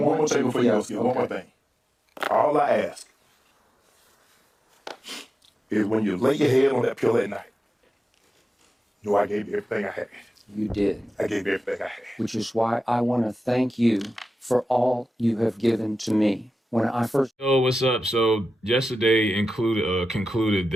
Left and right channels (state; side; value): normal; both; correlation 0.93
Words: thing before you go, Skip. One more thing. All I ask is when you lay your head on that pillow at night, know I gave you everything I had. You did. I gave you everything I had. Which is why I want to thank you for all you have given to me. When I first... Yo, what's up? So yesterday concluded